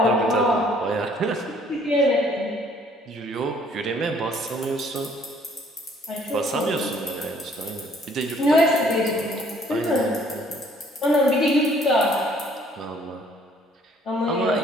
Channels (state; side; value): normal; both; correlation 0.61